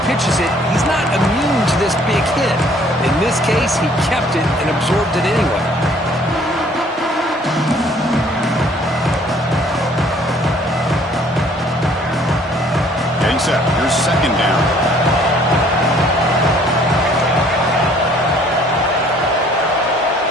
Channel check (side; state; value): both; normal; correlation 0.58